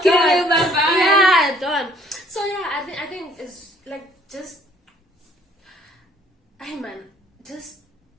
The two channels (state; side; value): normal; both; correlation 0.60